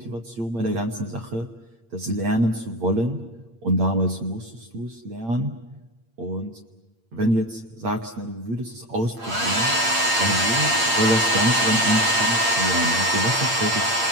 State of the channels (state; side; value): late; left; 8.7 ms